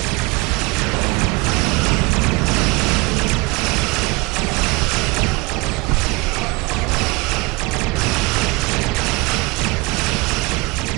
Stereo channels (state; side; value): quieter; left; 25.3 dB